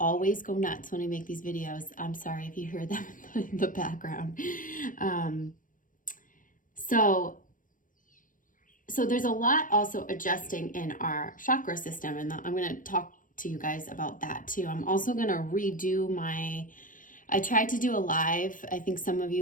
go nuts when I make these videos. I'm sorry if you hear them in the background. So there's a lot also adjusting in our chakra system, and I'm going to talk to you guys about that too. I'm also going to redo I tried to do a live. I think some of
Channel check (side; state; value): right; late; 0.39 ms